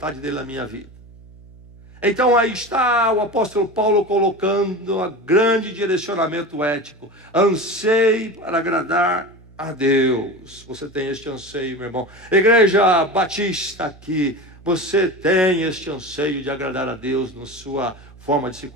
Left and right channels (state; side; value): noise; right; hum, 22 dB below the sound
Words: dele na minha vida. Então aí está o apóstolo Paulo colocando um grande direcionamento ético. Anseie para agradar a Deus. Você tem este anseio, meu irmão. Igreja Batista aqui, você tem este anseio de agradar a Deus na sua forma de se